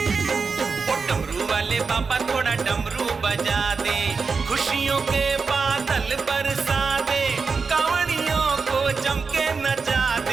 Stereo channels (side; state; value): left; quieter; 4.9 dB